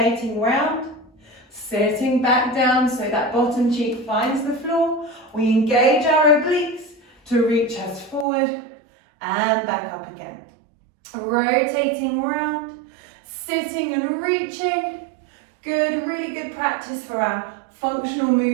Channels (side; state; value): left; drops out; at 8.2 s